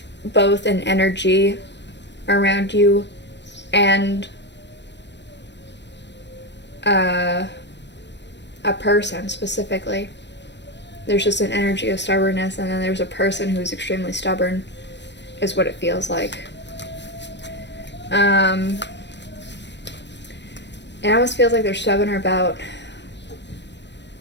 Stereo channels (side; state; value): right; late; 0.51 ms